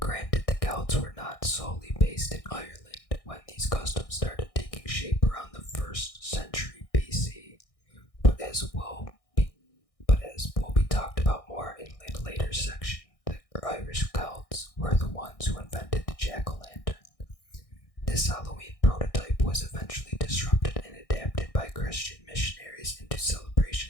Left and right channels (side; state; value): right; late; 1.6 ms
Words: the Celts were not solely based in Ireland when these customs custom started taking shape around the 1st century BC, but as will be talked about more in a later section, the Irish Celts were the ones who invented the jack-o'-lantern. This Halloween prototype was eventually disrupted and adapted by Christian missionaries into